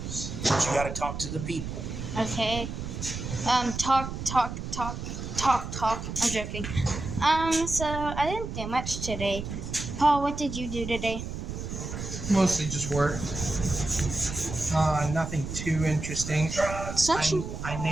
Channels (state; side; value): noise; right; rumble, 6 dB below the sound